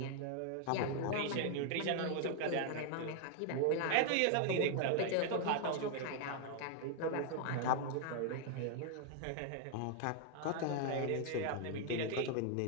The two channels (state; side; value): different; both; correlation 0.00